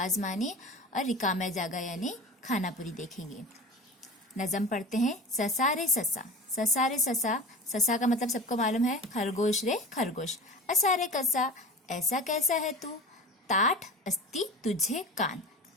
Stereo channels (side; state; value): both; normal; correlation 0.35